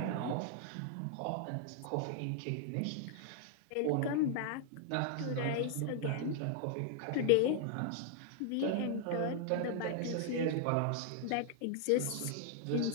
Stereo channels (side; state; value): both; different; correlation 0.00